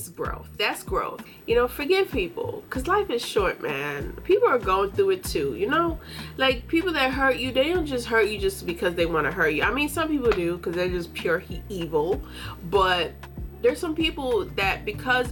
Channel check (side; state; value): both; identical; correlation 1.00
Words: growth. That's growth. You know, forgive people, because life is short, man. People are going through it too, you know? Like, people that hurt you, they don't just hurt you just because they want to hurt you. I mean, some people do because they're just pure evil, but there's some people that